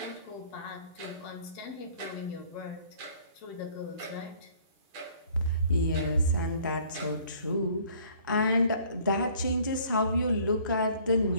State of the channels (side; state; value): both; inverted; correlation -0.56